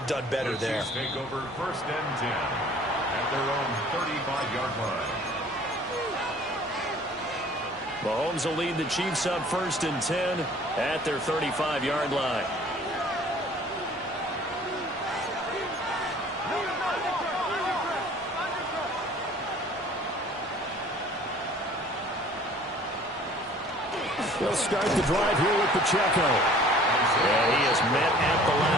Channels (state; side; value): normal; both; correlation 0.51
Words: done better there. The Chiefs take over 1st and 10 at their own 35-yard line. Mahomes will lead the Chiefs up 1st and 10 at their 35-yard line. They'll start the drive here with Pacheco. And he is met at the